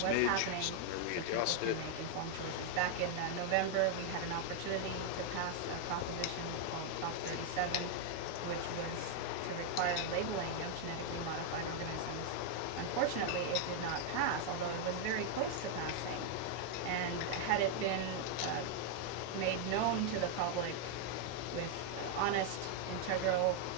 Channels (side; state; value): both; different; correlation 0.00